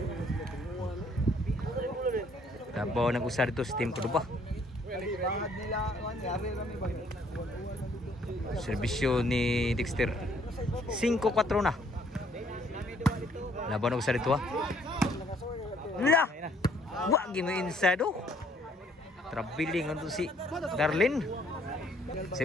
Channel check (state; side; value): normal; both; correlation 0.64